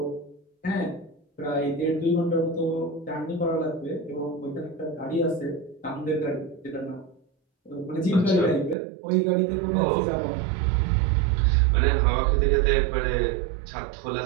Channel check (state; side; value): drops out; left; at 8.8 s